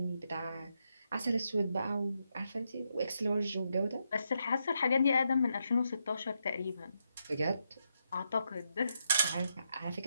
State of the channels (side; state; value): both; inverted; correlation -0.82